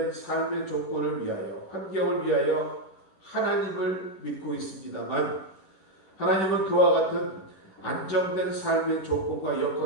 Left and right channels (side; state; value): right; late; 11 ms